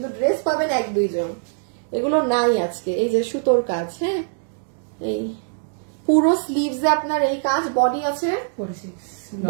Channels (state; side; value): silent; left; digital silence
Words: ড্রেস পাবেন 1-2 জন। এগুলো নাই আজকে। এই যে সুতোর কাজ, হ্যাঁ, এই পুরো স্লিভসে আপনার এই কাজ, বডি আছে